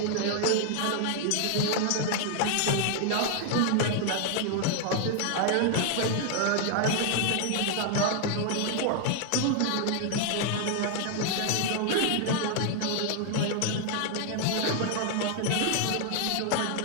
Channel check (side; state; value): both; different; correlation 0.00